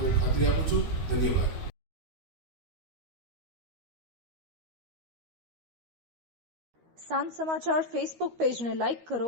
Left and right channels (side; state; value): left; late; 13 ms